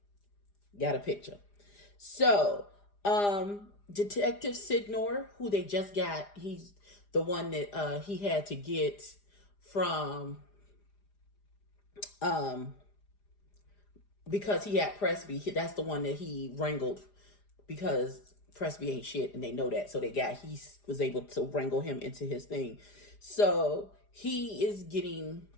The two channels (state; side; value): late; right; 4.9 ms